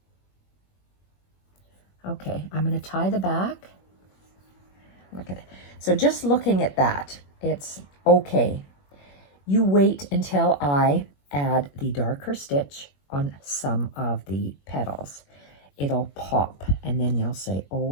Okay, I'm going to tie the back. Look at it. So just looking at that, it's okay. You wait until I add the darker stitch on some of the petals. It'll pop and then you'll say,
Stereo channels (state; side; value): late; right; 21 ms